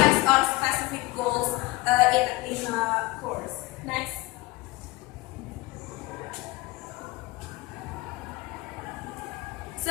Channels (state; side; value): quieter; right; 21.6 dB